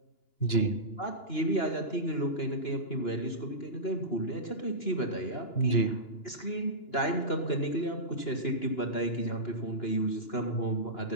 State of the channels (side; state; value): right; late; 2.9 ms